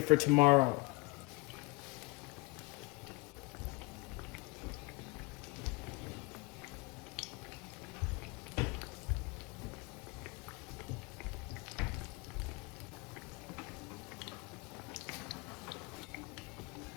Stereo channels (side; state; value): right; quieter; 25.7 dB